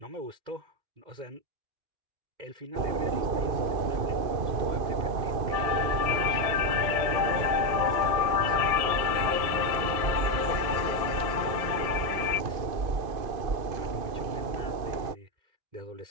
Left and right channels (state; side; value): late; left; 2.5 ms